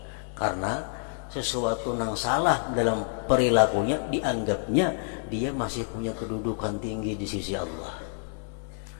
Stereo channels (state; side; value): silent; right; digital silence